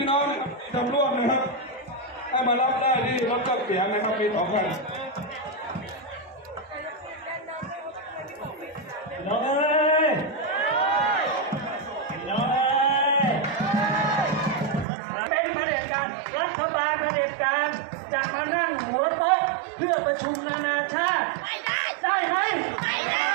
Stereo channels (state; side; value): drops out; left; at 14.9 s